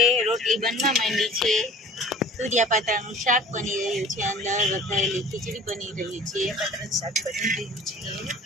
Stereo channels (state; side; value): normal; both; correlation 0.45